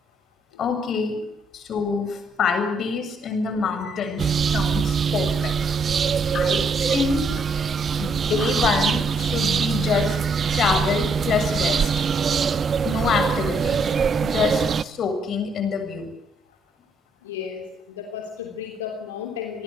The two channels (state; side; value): normal; both; correlation 0.71